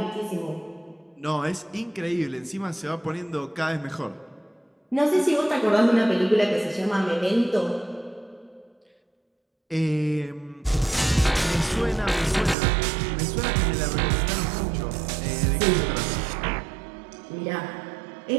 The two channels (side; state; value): left; drops out; at 12.6 s